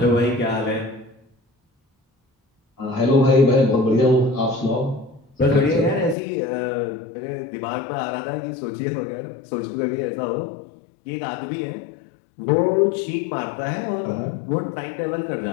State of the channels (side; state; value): right; drops out; at 6.2 s